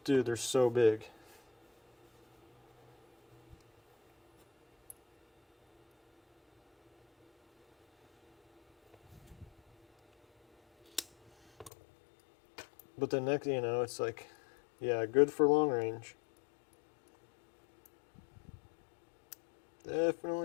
Dude, they're so big. But the next, it's like, yeah, good for long range.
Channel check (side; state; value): right; drops out; at 11.7 s